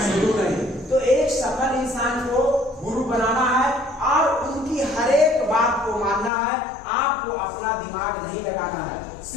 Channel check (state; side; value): drops out; right; at 6.3 s